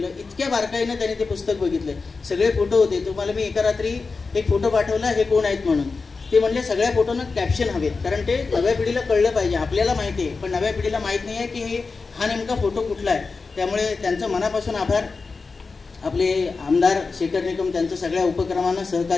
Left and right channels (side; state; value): right; quieter; 4.3 dB